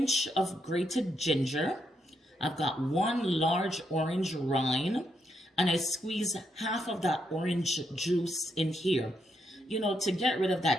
of grated ginger. I've got 1 large orange rind. And I squeeze half of that orange juice in here, you know, to get rid of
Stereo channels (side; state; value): both; normal; correlation 0.79